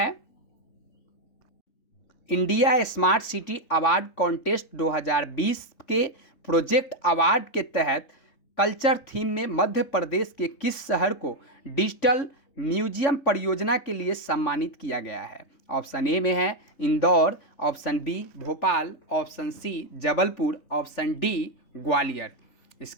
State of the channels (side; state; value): right; late; 3.6 ms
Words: India smart city award contest 2020 के प्रोजेक्ट अवार्ड के तहत कल्चर थीम में मध्य प्रदेश के किस शहर को डिजिटल म्यूजियम परियोजना के लिए सम्मानित किया गया है? ऑप्शन ए में है Indore, option B Bhopal, option C Jabalpur, option D Gwalior.